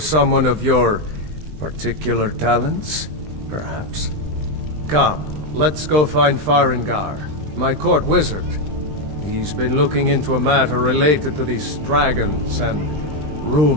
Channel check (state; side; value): late; left; 20 ms